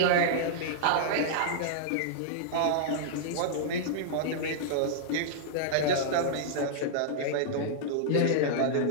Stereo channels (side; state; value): both; different; correlation -0.02